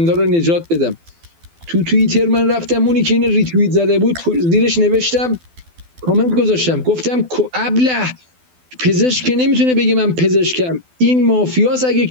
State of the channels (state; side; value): late; left; 12 ms